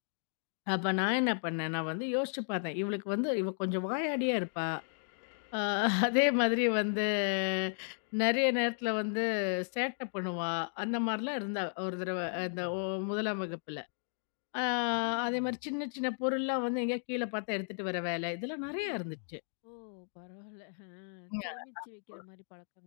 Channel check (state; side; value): silent; right; digital silence